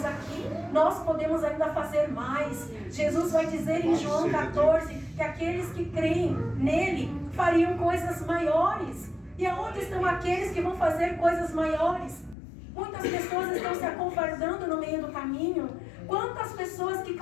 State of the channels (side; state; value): right; drops out; at 12.4 s